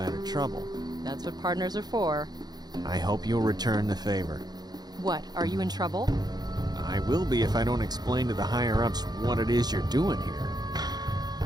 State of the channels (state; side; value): late; left; 0.19 ms